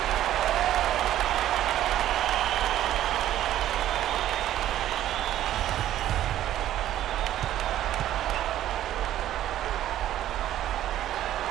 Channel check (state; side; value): quieter; left; 12.6 dB